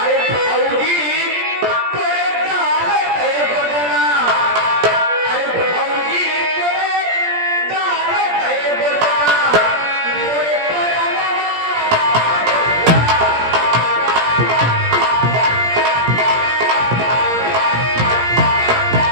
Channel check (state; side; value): late; left; 17 ms